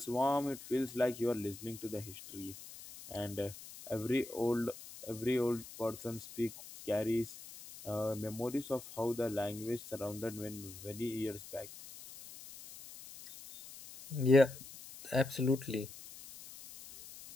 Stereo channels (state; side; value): noise; left; hiss, 15 dB below the sound